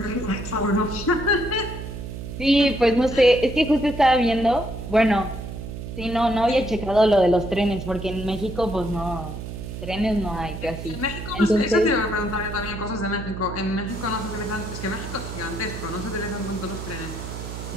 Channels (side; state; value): right; noise; hum, 8 dB below the sound